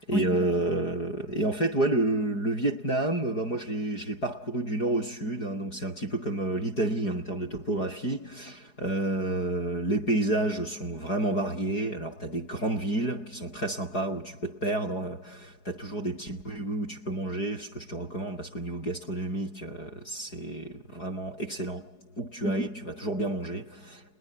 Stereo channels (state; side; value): late; right; 4.8 ms